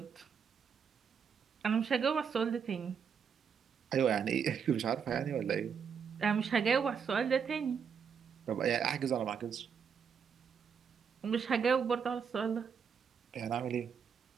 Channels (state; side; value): quieter; left; 6.8 dB